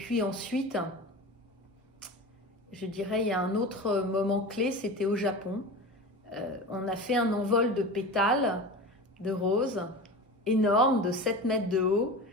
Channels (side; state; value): both; normal; correlation 0.31